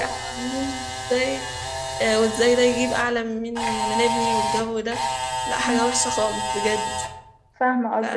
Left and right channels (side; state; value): both; identical; correlation 1.00